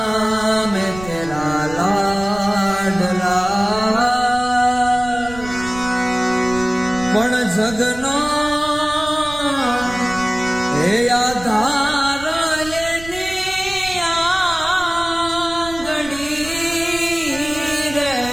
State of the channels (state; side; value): noise; right; rumble, 15 dB below the sound